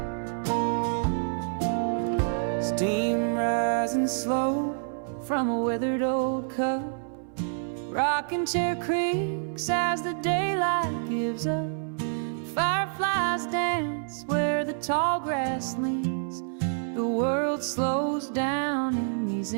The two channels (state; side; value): silent; left; 58 dB below the other